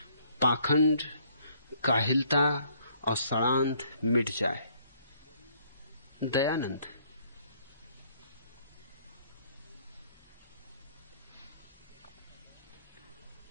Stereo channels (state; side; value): inverted; both; correlation -0.64